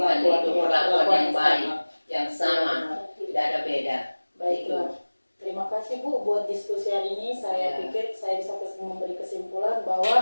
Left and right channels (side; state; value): both; inverted; correlation -1.00